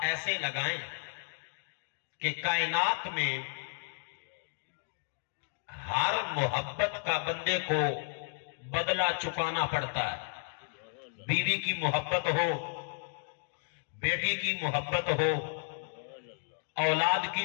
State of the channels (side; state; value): right; silent; digital silence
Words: ایسے لگائیں کہ کائنات میں ہر محبت کا بندے کو بدلہ چکانا پڑتا ہے۔ بیوی کی محبت ہو، بیٹی کی محبت ہو، اولاد